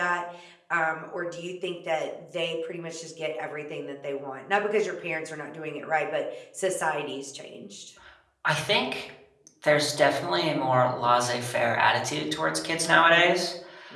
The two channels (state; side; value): identical; both; correlation 1.00